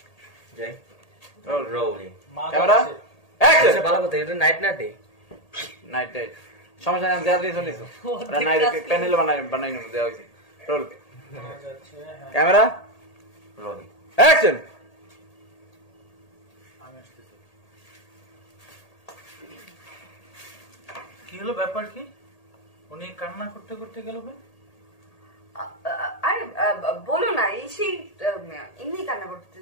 যাই রোলিং ক্যামেরা অ্যাকশন ভালো কথা এটা নাইট না ডে নাইট সমস্যা নাই দেয়া দিয়ে চলিছো ওরা নাইট প্যানেল বানাই নেব দেয়া হইছে রোল ক্যামেরা রোলিং অ্যাকশন কি হলো ব্যাপার কি উনি কান্না করতে করতে গেল কেন আরে বলো না এই সেই এমনি কান্না করতে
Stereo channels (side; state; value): right; late; 1.8 ms